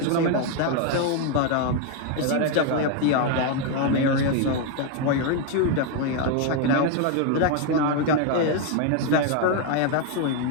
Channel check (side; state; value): both; different; correlation 0.01